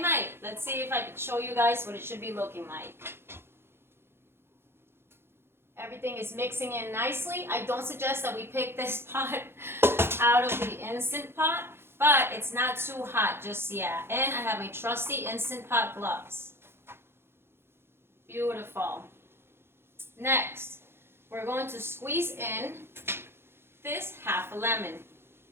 might. Let's see if I can show you guys what it should be looking like. Everything is mixing in nicely. I don't suggest that we pick this pot out of the Instant Pot, but it's not too hot just yet. And I have my trusty Instant Pot gloves. Beautiful. Next, we're going to squeeze in this half a lemon.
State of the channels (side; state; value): left; late; 0.11 ms